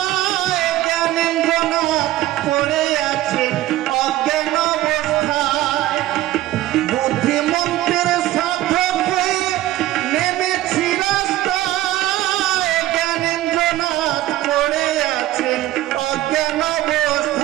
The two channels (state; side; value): quieter; left; 15.2 dB